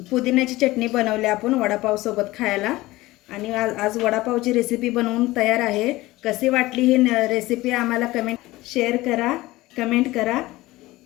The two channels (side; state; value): right; quieter; 18.8 dB